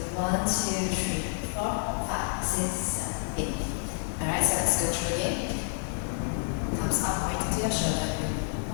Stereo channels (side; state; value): right; silent; 59 dB below the other